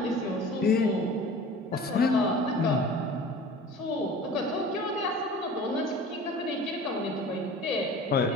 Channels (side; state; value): both; normal; correlation 0.41